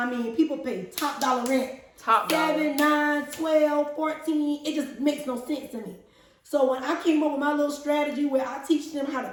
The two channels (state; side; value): identical; both; correlation 1.00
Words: mean, people pay top dollar rent. Top dollar. 7, 9, 12, 14. It just makes no sense to me. So when I came up with my little strategy where I teach them how to